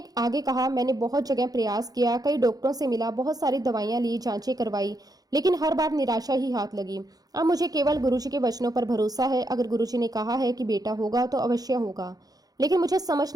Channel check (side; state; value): left; late; 0.18 ms